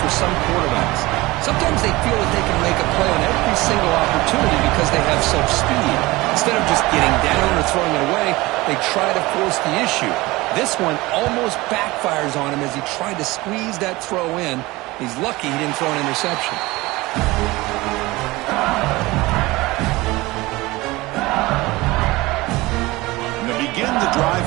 for some quarterbacks. Sometimes they feel that they can make a play on every single opportunity because they have such speed. Instead of just getting down or throwing it away, they try to force the issue. This one almost backfires on him as he tried to squeeze that throw in. He's lucky he didn't throw an interception. And they begin the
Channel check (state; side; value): quieter; left; 20.8 dB